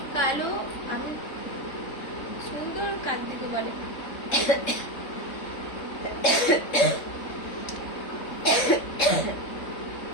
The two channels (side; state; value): right; late; 3.7 ms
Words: কালো। আমি সুন্দর কার দিকে বলে?